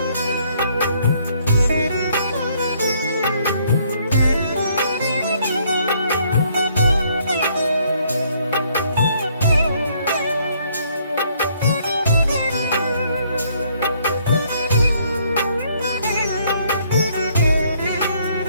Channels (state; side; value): inverted; both; correlation -0.67